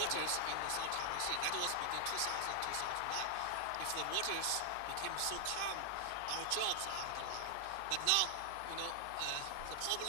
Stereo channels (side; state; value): both; different; correlation 0.00